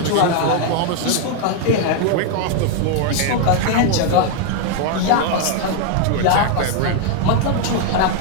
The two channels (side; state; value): both; different; correlation 0.00